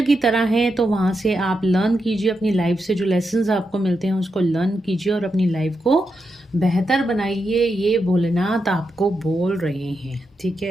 की तरह है, तो वहाँ से आप लर्न कीजिए, अपनी लाइफ से जो लेसन्स आपको मिलते हैं उसको लर्न कीजिए और अपनी लाइफ को बेहतर बनाइए। ये भोलेनाथ आपको बोल रहे हैं, ठीक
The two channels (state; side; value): normal; both; correlation 0.86